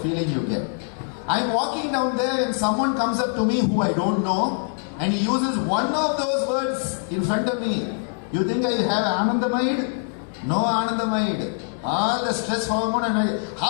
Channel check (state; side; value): silent; right; 63 dB below the other